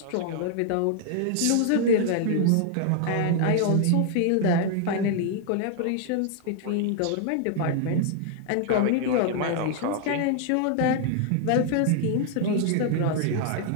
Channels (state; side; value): different; both; correlation 0.00